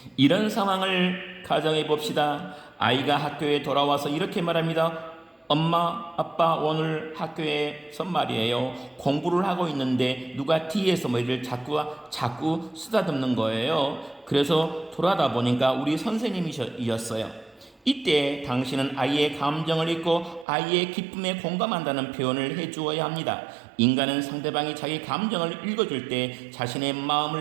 이런 상황을 가정해 봅시다. 아이가 학교에 돌아와서 이렇게 말합니다. 엄마, 아빠 오늘 학교에서 말이에요. 공부를 하고 있는데 누가 뒤에서 머리를 자꾸 쓰다듬는 거예요. 그래서 돌아다 보니까 우리 선생님이셨어요. 이때 당신은 아이의 감정을 읽고 아이의 기쁨에 공감한다는 표현을 해주어야 합니다. 인간은 상대방이 자기 감정을 읽어줄 때 자신의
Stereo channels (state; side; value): drops out; left; at 20.5 s